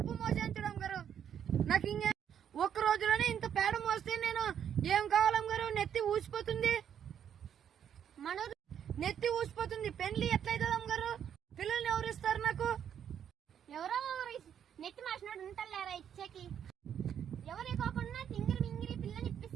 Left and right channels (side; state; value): left; quieter; 8.9 dB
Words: మోసాను చూడు అమ్మగారు. నాకు ఇంకా ఒక్క రోజులోనే ఇంత పేడ మోస్తే నేను ఏం కావాలమ్మగారు? నెత్తి ఊసిపోతుంది.